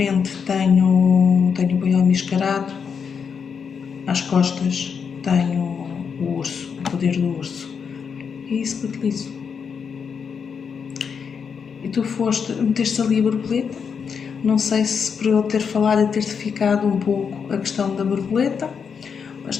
tenho o boi almiscarado, às costas tenho o urso, o poder do urso. É isso que utilizo. E tu meteste ali a borboleta. Não sei se por eu ter falado e ter-te ficado um pouco a questão da borboleta, mas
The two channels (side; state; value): right; quieter; 6.4 dB